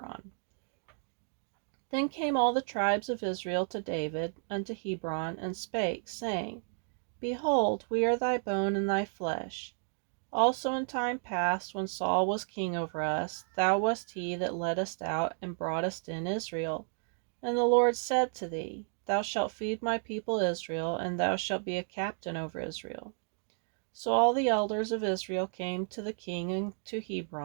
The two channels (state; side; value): silent; left; 56 dB below the other